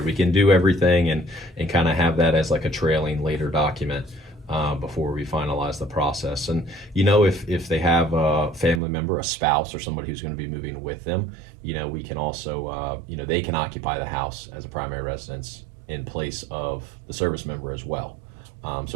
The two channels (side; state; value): left; drops out; at 8.8 s